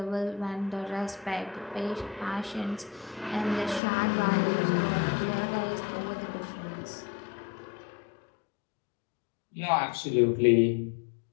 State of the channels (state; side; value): drops out; right; at 3.8 s